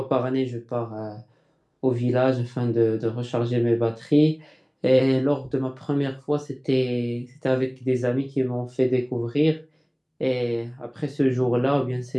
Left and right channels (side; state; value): both; identical; correlation 1.00